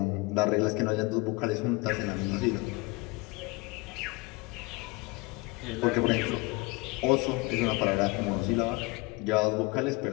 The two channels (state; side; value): quieter; right; 24.7 dB